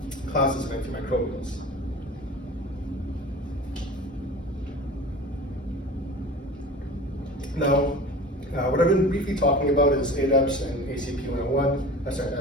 classes of antimicrobials. Now, what I've been briefly talking about is ADEPs and ACP101,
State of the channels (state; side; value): normal; both; correlation 0.37